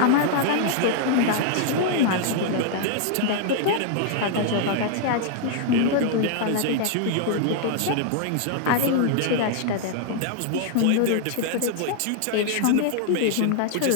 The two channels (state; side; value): different; both; correlation -0.01